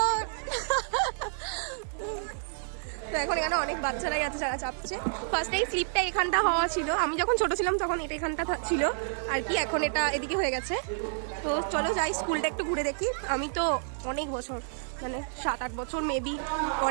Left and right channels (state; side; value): silent; left; digital silence